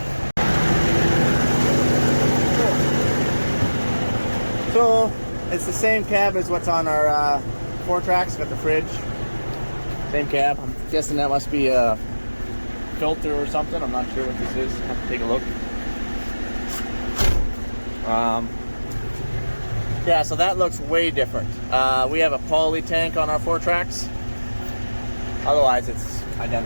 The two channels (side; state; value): both; inverted; correlation -1.00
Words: So it's the same cab as what's on our four tracks. Got the fridge, same cab. I'm guessing that must be a filter or something. I'm not sure what this is. Have to take a look. Yeah, so that looks way different. We have a poly tank on our four tracks. Otherwise, it's